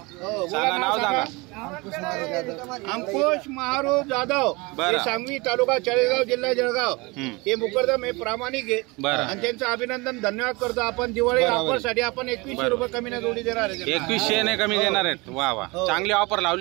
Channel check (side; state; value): left; quieter; 25.2 dB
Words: सांगा नाव सांगा। अंकुश महारूप जाधव, हे सांगवी तालुका चाळीसगाव जिल्हा जळगाव। हे मुकरदम हे प्रामाणिक आहे आणि त्यांचं अभिनंदन धन्यवाद करतो। आपण दिवाळी ऑफर साठी आपण 2100 रुपये कमी न जोडी देणार आहे। 2100 ने कमी देणार आहेत। वा वा, चांगली ऑफर